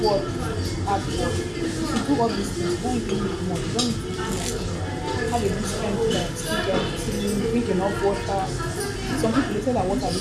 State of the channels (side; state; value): both; identical; correlation 1.00